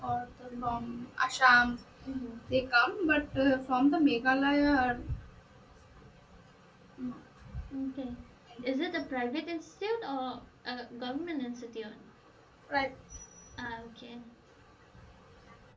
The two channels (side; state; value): both; identical; correlation 1.00